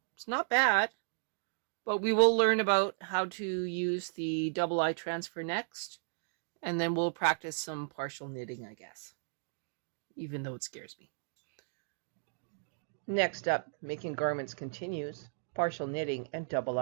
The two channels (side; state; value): left; silent; digital silence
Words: It's not bad, but we will learn about how to use the double eye transfer next, and then we'll practice some partial knitting, I guess, even though it scares me. Next up, making garments continues, partial knitting and double